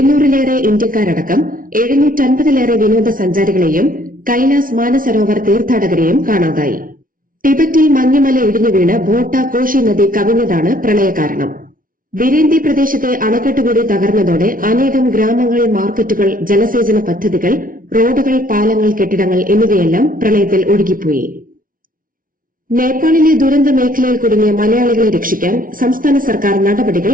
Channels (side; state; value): left; late; 0.40 ms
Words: ഇന്ത്യക്കാരടക്കം 750-ലേറെ വിനോദസഞ്ചാരികളെയും കൈലാസ് മാനസരോവർ തീർത്ഥാടകരെയും കാണാതായി. ടിബറ്റിൽ മഞ്ഞുമല ഇടിഞ്ഞുവീണ് ഭോട്ട കോഷി നദി കവിഞ്ഞതാണ് പ്രളയകാരണം. ബിരേന്തി പ്രദേശത്തെ അണക്കെട്ടുകൂടി തകർന്നതോടെ അനേകം ഗ്രാമങ്ങൾ, മാർക്കറ്റുകൾ, ജലസേചന പദ്ധതികൾ, റോഡുകൾ, പാലങ്ങൾ, കെട്ടിടങ്ങൾ എന്നിവയെല്ലാം പ്രളയത്തിൽ ഒഴുകിപ്പോയി. നേപ്പാളിലെ ദുരന്ത മേഖലയിൽ കുടുങ്ങിയ മലയാളികളെ രക്ഷിക്കാൻ സംസ്ഥാന സർക്കാർ നടപടികൾ